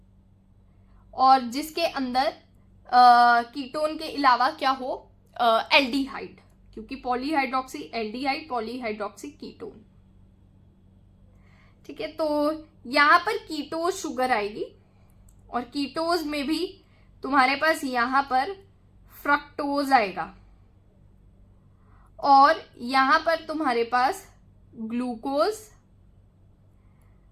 और जिसके अंदर कीटोन के अलावा क्या हो, एल्डिहाइड, क्योंकि पॉलीहाइड्रोक्सी एल्डिहाइड, पॉलीहाइड्रोक्सी कीटोन। ठीक है, तो यहां पर कीटोज शुगर आएगी, और कीटोज में भी तुम्हारे पास यहां पर फ्रक्टोज आएगा, और यहां पर तुम्हारे पास glucose,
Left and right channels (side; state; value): both; identical; correlation 1.00